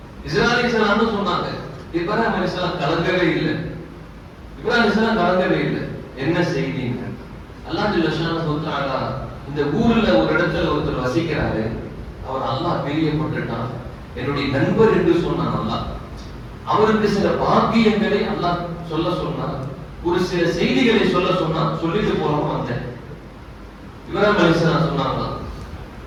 இப்ராஹிம் அலைஹிஸ்ஸலாம் கலங்கவே இல்லை. என்ன செய்திங்க? அல்லாஹ் ஜல்ல ஷானஹு வ தஆலா இந்த ஊர்ல ஒரு இடத்துல ஒருத்தர் வசிக்கிறாரு, அவர் அல்லாஹ் பிரியப்பட்டுட்டான், என்னுடைய நண்பர் என்று சொன்னான் அல்லாஹ். அவருக்கு சில பாக்கியங்களை அல்லாஹ் சொல்ல சொன்னார், ஒரு சில செய்திகளை சொல்ல சொன்னார், சொல்லிட்டு போறோம் வந்தேன். இப்ராஹிம் அலைஹிஸ்ஸலாம் சொன்னாங்க,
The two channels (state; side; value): identical; both; correlation 1.00